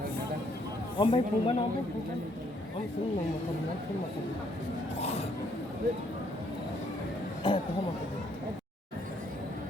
Om baik puman, om baik puman. Om sung mau makan mana? Sung makan. Kau makan.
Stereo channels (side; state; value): both; normal; correlation 0.69